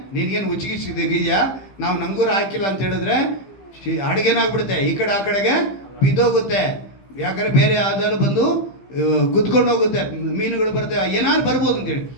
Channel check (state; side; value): late; right; 15 ms